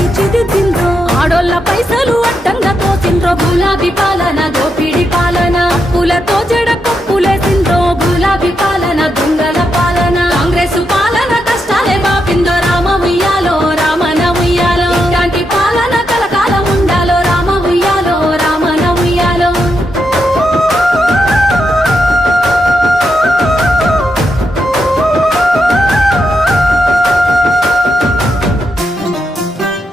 ఆడోళ్ళ పైసలు అడ్డంగా తోసిండ్రో గులాబీ పాలన దోపిడి పాలన అప్పులతో జడ కప్పులేసిండ్రో గులాబీ పాలన దొంగల పాలన కాంగ్రెస్ పాలన కష్టాలే బాపిందో రామ ఉయ్యాలో రామన ఉయ్యాలో ఇలాంటి పాలన కలకాలం ఉండాలో రామ ఉయ్యాలో రామన ఉయ్యాలో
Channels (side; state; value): both; normal; correlation 0.83